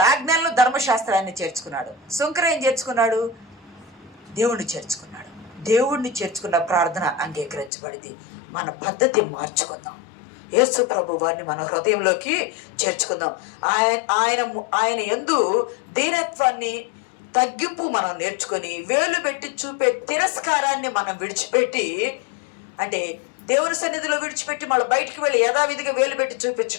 ఆజ్ఞలను, ధర్మశాస్త్రాన్ని చేర్చుకున్నాడు. సుంకర ఏం చేర్చుకున్నాడు? దేవుణ్ణి చేర్చుకున్నాడు. దేవుణ్ణి చేర్చుకున్న ప్రార్థన అంగీకరించబడింది. మన పద్ధతి మార్చుకుందాం. యేసు ప్రభు వారిని మన హృదయంలోకి చేర్చుకుందాం. ఆయన యందు దీనత్వాన్ని, తగ్గింపు మనం నేర్చుకొని, వేలు పెట్టి చూపే తిరస్కారాన్ని మనం విడిచిపెట్టి, అంటే దేవుని సన్నిధిలో విడిచిపెట్టి మళ్ళీ బయటికి వెళ్ళి యథావిధిగా వేలు పెట్టి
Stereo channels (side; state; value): right; drops out; at 7.7 s